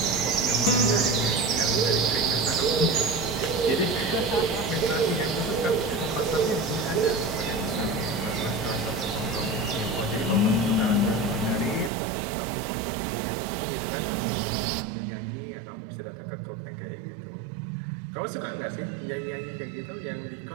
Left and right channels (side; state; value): left; drops out; at 11.9 s